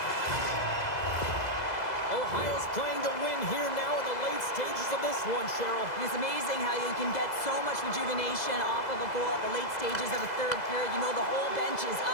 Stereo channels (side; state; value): right; late; 2.0 ms